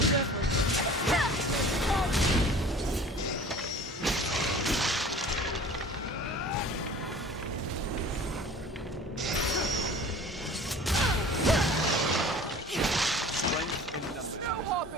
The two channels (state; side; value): normal; both; correlation 0.44